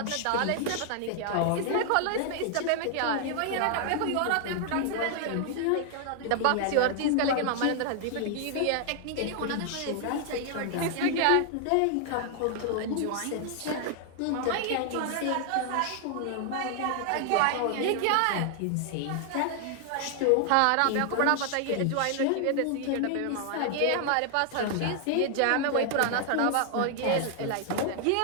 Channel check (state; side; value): different; both; correlation 0.00